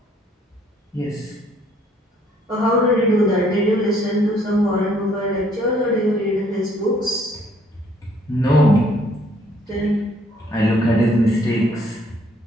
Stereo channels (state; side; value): normal; both; correlation 0.64